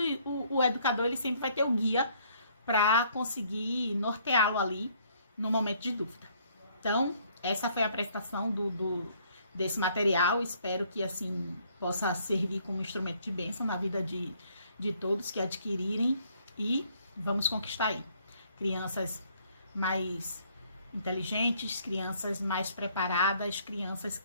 educador, ele sempre vai ter o guia para conseguir norteá-lo ali no momento de dúvida. Então, essa foi a apresentação desse material. Espero que, assim, possa servir como instrumento de bênção na vida de todos que adquirirem. E vamos conquistar aí crianças mais inteligentes, crianças mais preparadas, crianças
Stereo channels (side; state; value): both; inverted; correlation -0.64